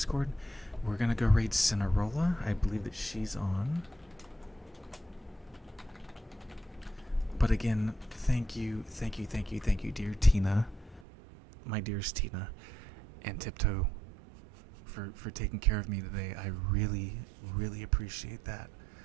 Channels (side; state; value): left; drops out; at 11.1 s